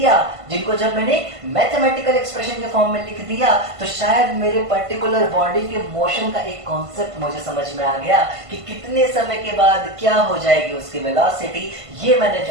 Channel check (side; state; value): left; late; 1.5 ms